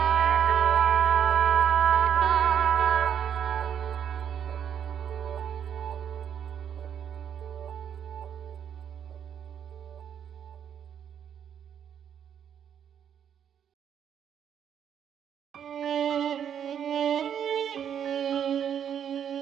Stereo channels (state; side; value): quieter; left; 8.7 dB